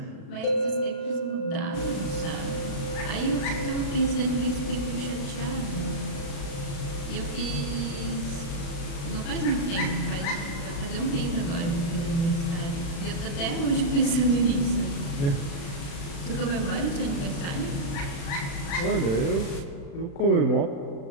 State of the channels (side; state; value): right; late; 36 ms